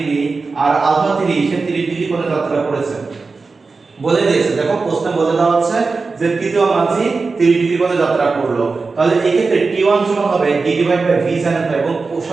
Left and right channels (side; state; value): left; quieter; 4.2 dB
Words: আর আলফা 3 সে 30 ডিগ্রি কোণে যাত্রা করেছে বলে দিয়েছে। দেখো প্রশ্নে বলে দেওয়া আছে যে তৃতীয় মাঝি 30 ডিগ্রি কোণে যাত্রা করলো। তাহলে এই ক্ষেত্রে t1 সমান হবে d / v sin alpha এবং